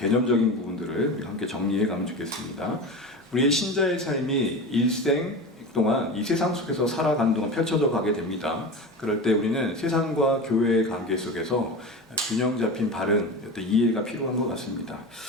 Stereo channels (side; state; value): both; normal; correlation 0.28